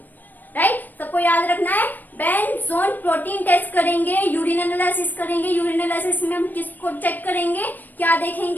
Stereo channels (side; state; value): right; late; 0.088 ms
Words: राइट। सबको याद रखना है, बेंजोन प्रोटीन टेस्ट करेंगे, यूरिन एनालिसिस करेंगे। यूरिन एनालिसिस में हम किसको चेक करेंगे, क्या